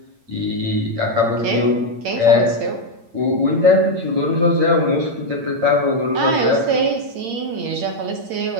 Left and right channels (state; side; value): late; left; 8.8 ms